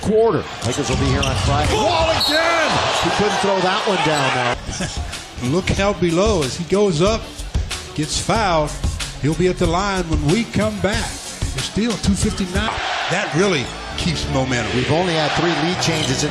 quarter. Lakers will be here on Friday. Wall again! He couldn't throw that one down now. Look how below as he goes up, gets fouled. He'll be at the line when we come back. There's still 2:59. That really keeps momentum. We've only had 3 lead changes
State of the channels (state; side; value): identical; both; correlation 1.00